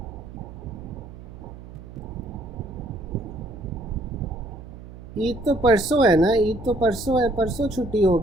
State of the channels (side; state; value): right; noise; hum, 15 dB below the sound